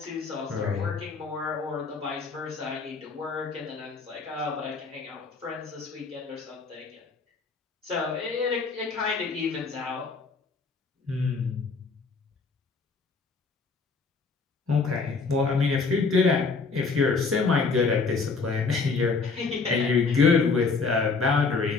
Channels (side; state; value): right; quieter; 4.5 dB